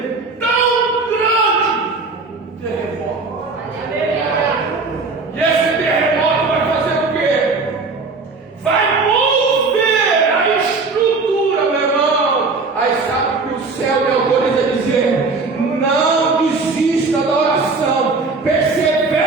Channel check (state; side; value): quieter; left; 4.0 dB